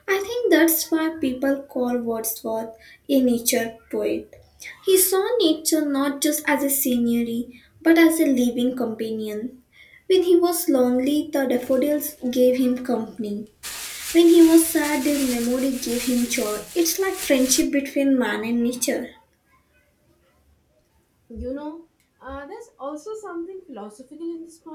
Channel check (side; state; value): both; identical; correlation 1.00